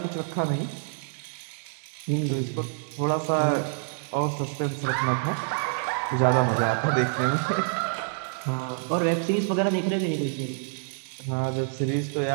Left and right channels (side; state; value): left; silent; digital silence